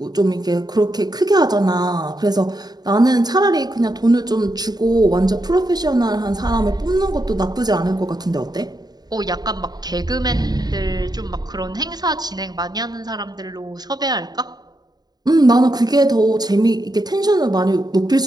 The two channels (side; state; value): left; late; 0.19 ms